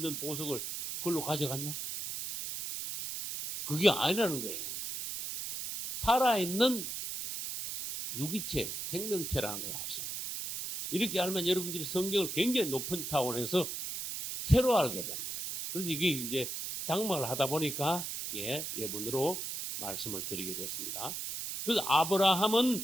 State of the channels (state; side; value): noise; right; hiss, 5 dB below the sound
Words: 보석을 그걸로 가져갔냐? 그게 아니라는 거예요. 살아있는 유기체, 생명체라는 걸 아셔요. 이렇게 알면 여러분들이 성경을 굉장히 높은 차원에서 새로 알게 됩니다. 그래서 이게 이제 장막을 하다 보니까, 예문으로 말씀을 드리게 됐습니다. 그래서